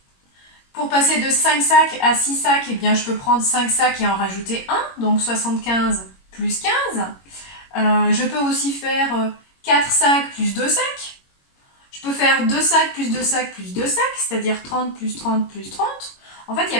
Pour passer de 5 sacs à 6 sacs, eh bien, je peux prendre 5 sacs et en rajouter 1, donc 75 plus 15. Je peux aussi faire 4 sacs plus 2 sacs. Je peux faire 2 sacs plus 2 sacs plus 2 sacs, c'est-à-dire 30 plus 30 plus 30. En fait, il y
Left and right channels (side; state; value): right; late; 21 ms